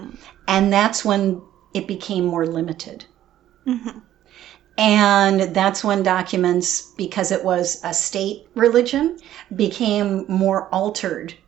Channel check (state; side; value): quieter; left; 12.4 dB